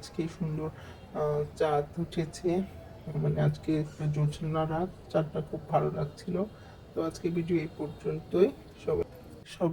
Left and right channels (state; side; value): identical; both; correlation 1.00